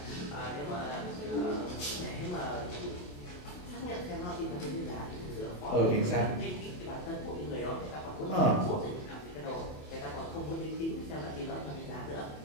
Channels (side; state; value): right; late; 28 ms